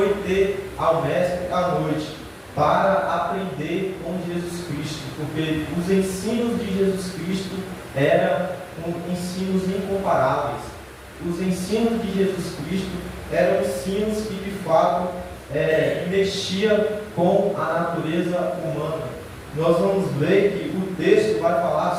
ter ao mestre à noite para aprender com Jesus Cristo, porque os ensinos de Jesus Cristo eram ensinos incomparáveis. Os ensinos de Jesus Cristo eram ensinos que de fato mexia com a natureza humana. Nós vamos ver que o texto vai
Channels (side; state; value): both; identical; correlation 1.00